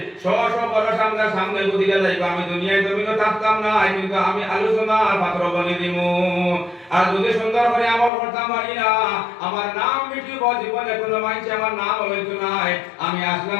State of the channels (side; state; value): right; drops out; at 8.1 s